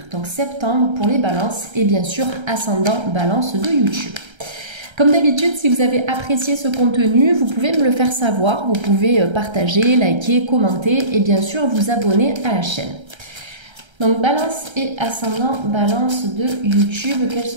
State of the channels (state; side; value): late; left; 1.3 ms